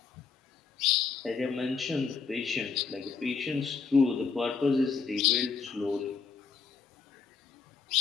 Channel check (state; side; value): quieter; right; 5.4 dB